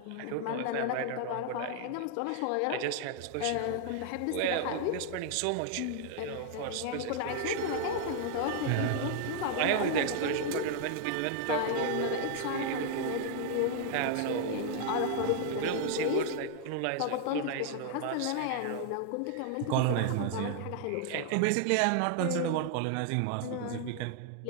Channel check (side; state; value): both; different; correlation 0.00